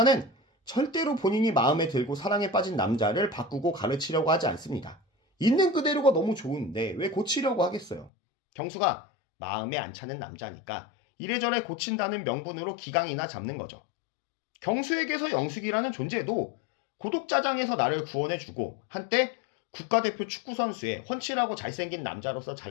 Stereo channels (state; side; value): drops out; right; at 8.1 s